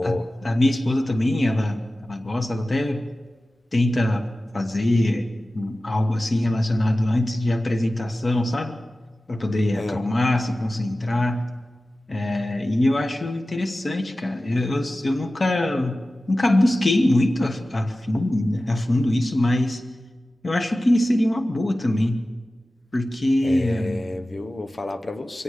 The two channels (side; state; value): both; normal; correlation 0.95